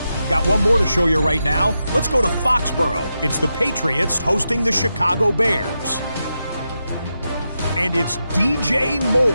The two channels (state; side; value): inverted; both; correlation -0.88